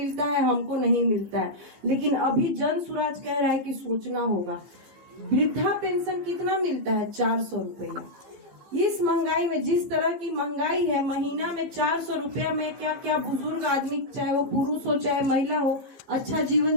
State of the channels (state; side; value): late; left; 14 ms